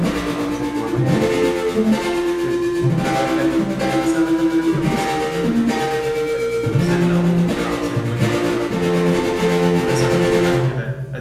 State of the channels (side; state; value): both; identical; correlation 1.00